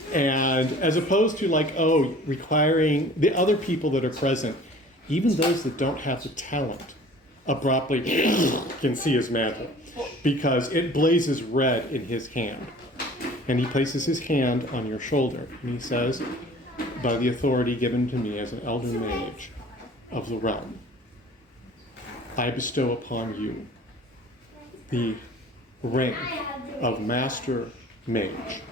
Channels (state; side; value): normal; both; correlation 0.47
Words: and as opposed to requiring the other people that are present, even those that don't have the talent, abruptly can see his mantle. Because it blazes red in his hand. And he places his hand on your shoulder. And he says, by the authority given to me as an elder mage of the realm, I bestow upon you the rank of Master Mage